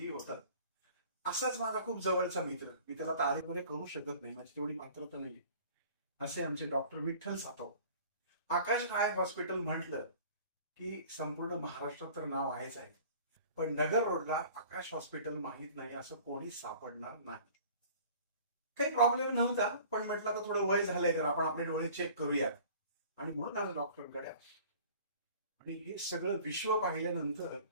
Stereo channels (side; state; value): both; inverted; correlation -0.47